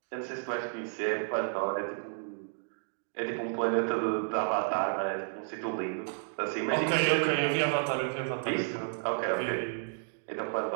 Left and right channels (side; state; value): left; silent; digital silence